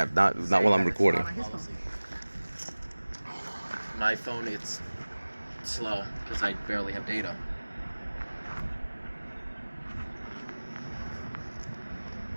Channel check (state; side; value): inverted; both; correlation -1.00